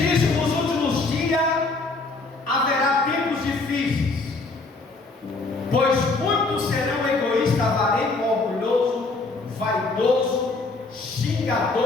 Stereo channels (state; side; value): quieter; right; 3.6 dB